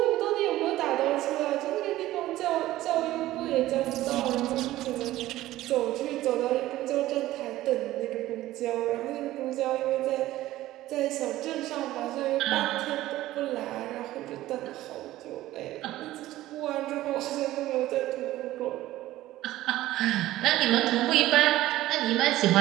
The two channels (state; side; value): quieter; left; 15.6 dB